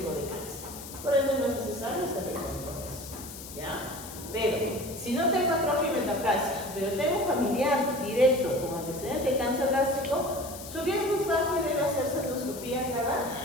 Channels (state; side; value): noise; left; hiss, 13 dB below the sound